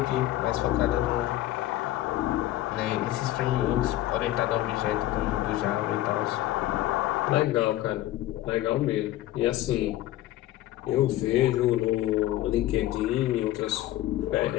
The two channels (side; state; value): right; quieter; 15.0 dB